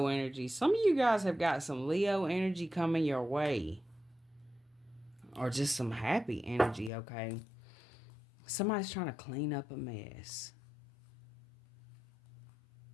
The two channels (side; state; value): right; drops out; at 6.9 s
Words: energy. Some of you guys have got some Leo energy coming your way. Or just some happy energy, okay? Somebody's trying to clean up a mess.